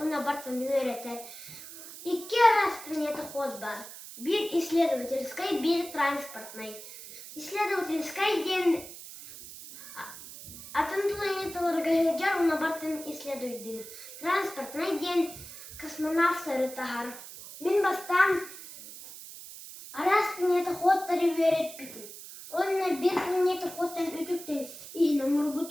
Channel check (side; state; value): right; noise; hiss, 14 dB below the sound